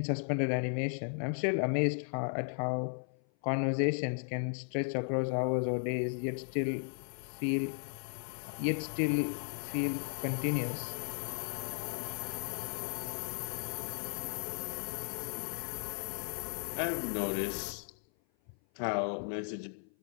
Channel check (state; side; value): silent; right; 54 dB below the other